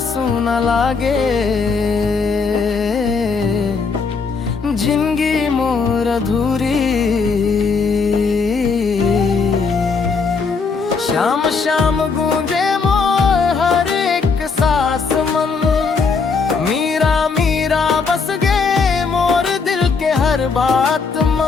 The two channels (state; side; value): quieter; right; 4.9 dB